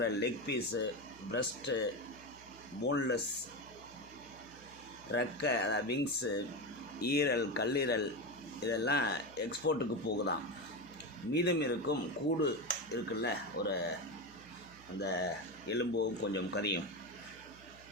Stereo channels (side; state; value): right; noise; hum, 22 dB below the sound